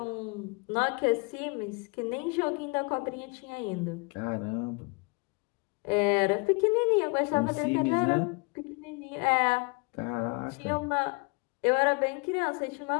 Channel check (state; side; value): quieter; right; 30.7 dB